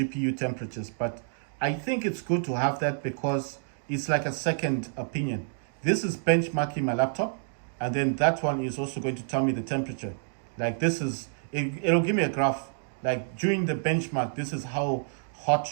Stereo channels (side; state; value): left; silent; digital silence